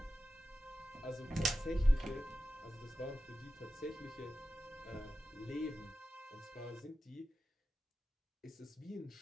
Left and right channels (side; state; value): both; normal; correlation 0.92